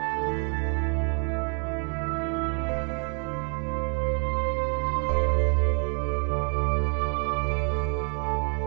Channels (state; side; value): quieter; left; 39.8 dB